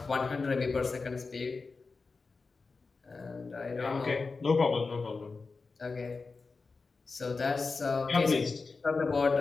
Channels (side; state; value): right; quieter; 4.2 dB